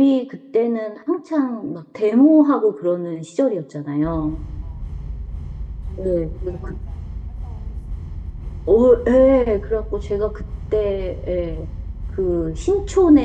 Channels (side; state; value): both; identical; correlation 1.00